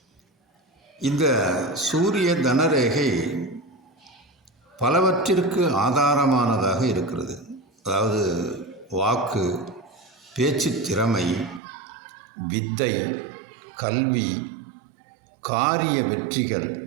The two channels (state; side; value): drops out; left; at 11.6 s